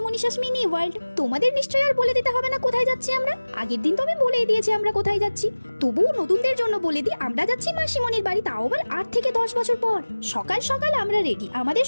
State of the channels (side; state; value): both; inverted; correlation -1.00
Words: Manisha's mini world. তোমাদের নিশ্চয়ই আর বলে দিতে হবে না কোথায় যাচ্ছি আমরা। আগের দিন তো আমি বলেই দিয়েছি আমরা কোথায় যাচ্ছি, তবুও নতুনদের জন্য বলে দিই আমরা যাচ্ছি মাসিমণির বাড়ি, তাও আবার 8 থেকে 10 বছর পর। সকাল সকাল আমরা রেডি, আমাদের